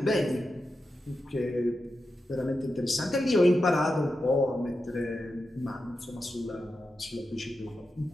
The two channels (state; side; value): normal; both; correlation 0.89